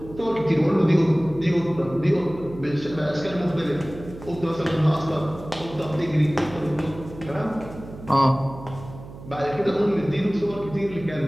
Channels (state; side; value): noise; right; hum, 15 dB below the sound